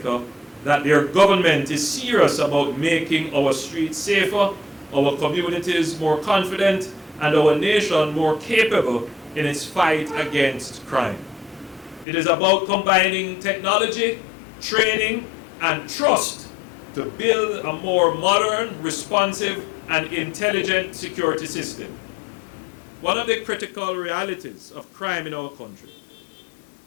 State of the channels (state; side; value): drops out; right; at 12.1 s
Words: that their government is serious about making our streets safer, our communities more confident, and our nation more capable in its fight against crime. It is about combining technology, training, and trust to build a more modern, responsive, and intelligent security system. One of the critical realities of crime in our country